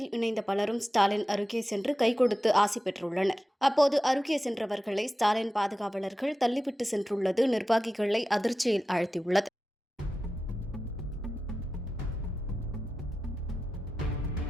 இணைந்த பலரும் ஸ்டாலின் அருகே சென்று கை கொடுத்து ஆசி பெற்றுள்ளனர். அப்போது அருகே சென்றவர்களை ஸ்டாலின் பாதுகாவலர்கள் தள்ளிவிட்டு சென்றுள்ளது நிர்வாகிகளை அதிர்ச்சியில் ஆழ்த்தியுள்ளது.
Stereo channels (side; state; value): both; normal; correlation 0.93